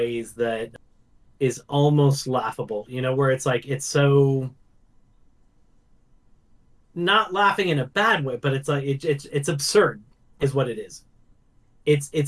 that is almost laughable, where it's like it's so not laughing in a bad way, but it's like it's absurd is what it is.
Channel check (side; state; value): both; identical; correlation 1.00